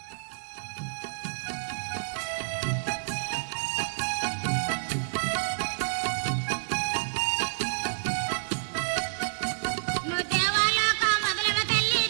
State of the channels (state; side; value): silent; left; digital silence